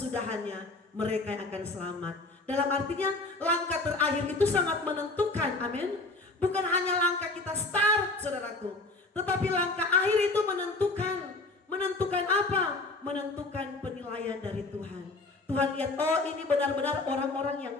mereka yang akan selamat. Dalam artinya, langkah terakhir itu sangat menentukan, amin. Bukan hanya langkah kita start, saudaraku, tetapi langkah akhir itu menentukan. Menentukan apa? Menentukan penilaian dari Tuhan. Tuhan lihat, oh ini benar-benar orang-orang yang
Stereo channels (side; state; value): right; quieter; 3.2 dB